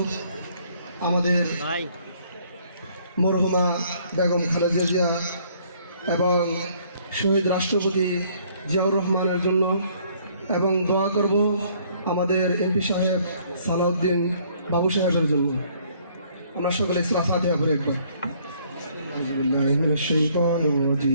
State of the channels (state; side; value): inverted; both; correlation -0.62